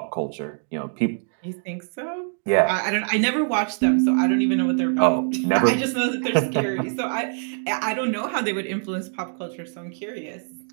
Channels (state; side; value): silent; left; digital silence